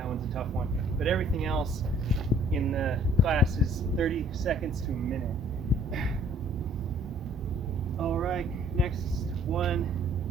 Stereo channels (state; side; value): normal; both; correlation 0.58